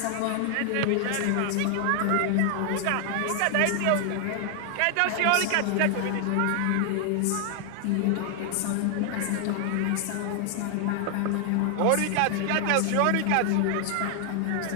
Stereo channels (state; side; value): different; both; correlation 0.00